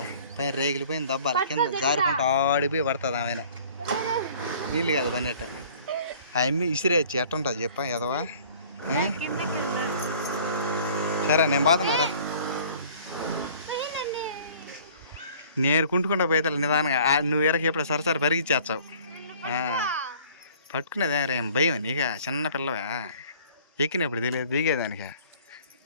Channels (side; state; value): both; inverted; correlation -0.52